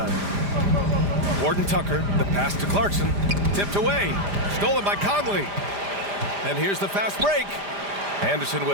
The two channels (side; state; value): left; late; 5.0 ms